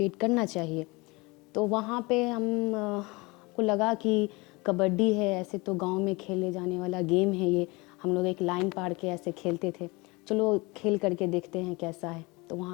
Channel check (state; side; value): quieter; right; 25.2 dB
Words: करना चाहिए। तो वहाँ पे हम को लगा कि कबड्डी है, ऐसे तो गांव में खेले जाने वाला गेम है ये। हम लोग एक लाइन पार के ऐसे खेलते थे, चलो खेल करके देखते हैं कैसा है। तो